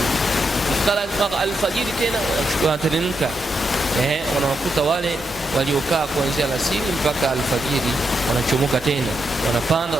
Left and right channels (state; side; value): normal; both; correlation 0.83